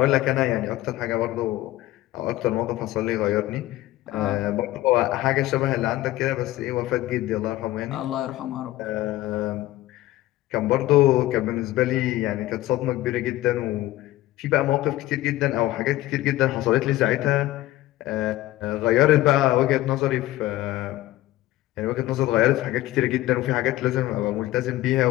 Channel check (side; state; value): right; quieter; 16.0 dB